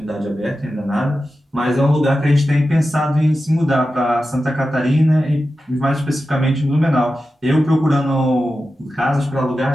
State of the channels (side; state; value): both; normal; correlation 0.92